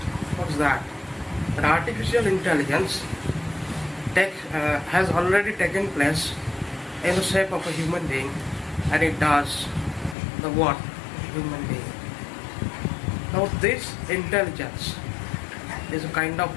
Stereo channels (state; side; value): drops out; right; at 10.2 s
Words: What's that? That artificial intelligence has already taken place in the shape of a human being, and it does the what? Human being. Now this intelligence is a kind of